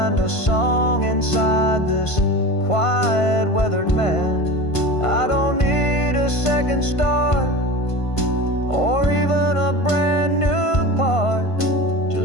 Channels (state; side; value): late; right; 1.5 ms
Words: a song inside this quiet, weathered man. I don't need a second start or even a brand new part,